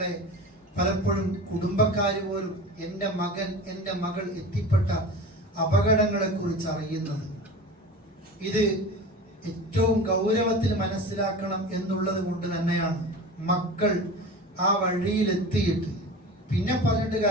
പലപ്പോഴും കുടുംബക്കാർ പോലും എൻ്റെ മകൻ, എൻ്റെ മകൾ എത്തിപ്പെട്ട അപകടങ്ങളെ കുറിച്ച് അറിയുന്നത്. ഇത് ഏറ്റവും ഗൗരവത്തിൽ മനസ്സിലാക്കണം എന്നുള്ളത് കൊണ്ട് തന്നെയാണ് മക്കൾ ആ വഴിയിലെത്തിയിട്ട് പിന്നെ പറഞ്ഞിട്ട്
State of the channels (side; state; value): both; normal; correlation 0.33